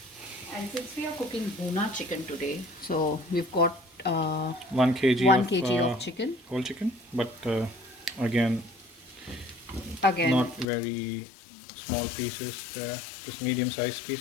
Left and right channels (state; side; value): drops out; right; at 10.7 s